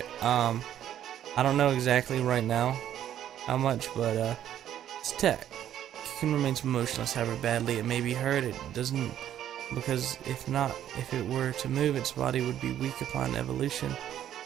I don't know exactly right now how much, but it's tech. Cocoon remains motionless, however badly it may be hurt. It doesn't, because if it were to move, its body would be weak upon evolution.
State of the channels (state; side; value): quieter; left; 11.0 dB